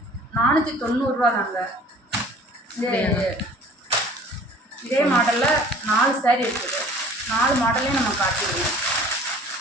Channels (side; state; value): both; normal; correlation 0.49